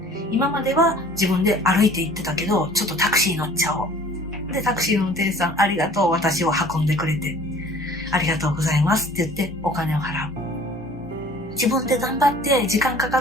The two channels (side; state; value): both; normal; correlation 0.50